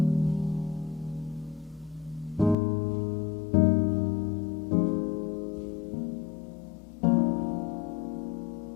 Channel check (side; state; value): right; drops out; at 2.6 s